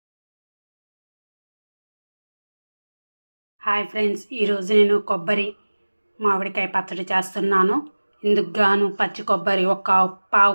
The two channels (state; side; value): inverted; both; correlation -1.00